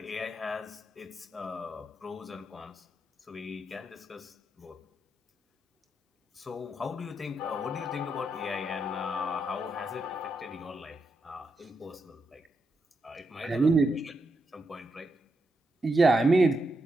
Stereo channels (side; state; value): both; normal; correlation 0.83